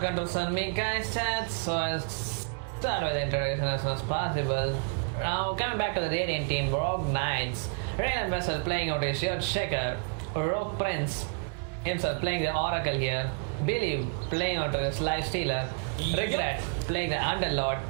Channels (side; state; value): left; quieter; 39.9 dB